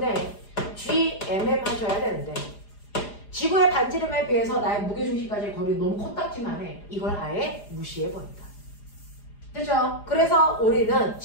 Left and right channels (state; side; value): late; right; 4.9 ms